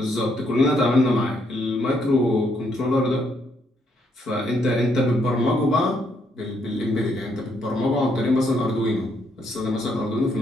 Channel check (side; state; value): both; normal; correlation 0.73